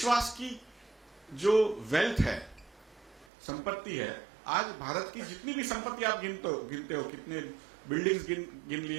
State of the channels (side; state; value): left; drops out; at 3.2 s